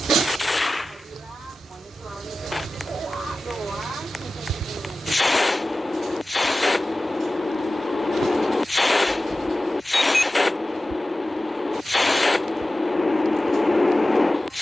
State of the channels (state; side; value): normal; both; correlation 0.95